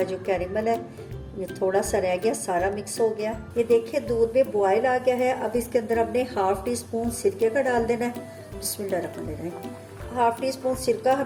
जो कैरेमल है ये थोड़ा सा रह गया, सारा मिक्स हो गया। ये देखिए दूध में बॉयल आ गया है। अब इसके अंदर हमने ½ टी स्पून सिरके का डाल देना है। बिस्मिल्लाहिर्रहमानिर्रहीम। ½ टी स्पून सिरका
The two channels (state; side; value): identical; both; correlation 1.00